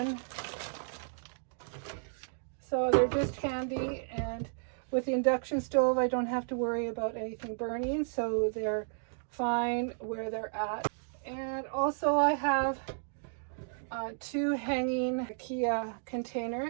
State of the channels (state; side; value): silent; left; digital silence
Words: so they're just handy. And with the induction stove, I don't have to worry about anything burning, so they're fine where they're at. And also I have 2 hanging IKEA